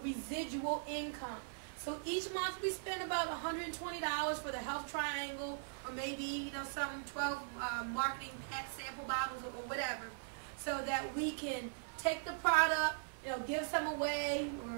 income. So each month we spend about $120 for the health triangle, or maybe some 12 marketing pack sample bottles or whatever, so that we can take the product, give some away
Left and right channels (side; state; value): left; silent; 51 dB below the other